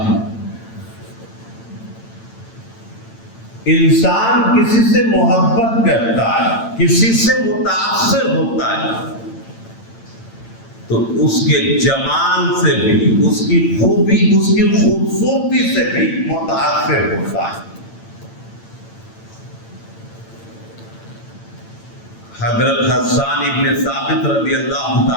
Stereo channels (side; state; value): right; late; 8.9 ms